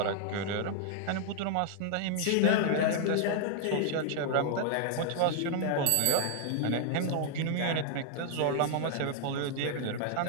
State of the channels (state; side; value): different; both; correlation 0.00